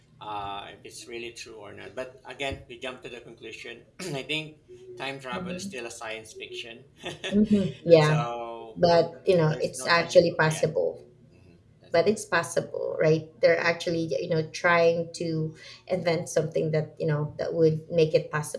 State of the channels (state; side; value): identical; both; correlation 1.00